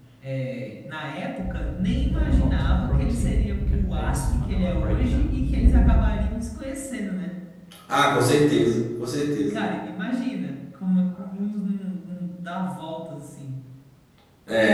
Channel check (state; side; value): identical; both; correlation 1.00